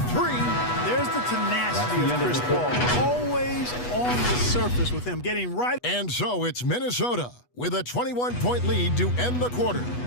three. There's the tenacity of Chris Paul. Always on the surface with him, getting right. And so it's Minnesota with a 21-point lead to end the quarter.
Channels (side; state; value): right; late; 8.2 ms